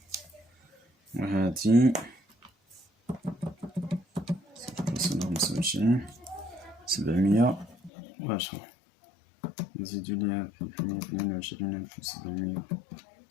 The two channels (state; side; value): drops out; right; at 7.9 s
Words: وهادي 0.25 710 نزيدو ليها